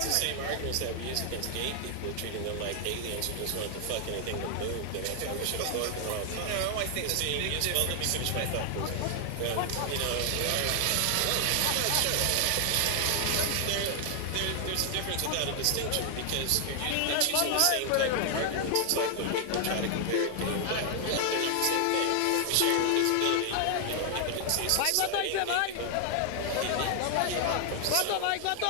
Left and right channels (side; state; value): both; different; correlation 0.00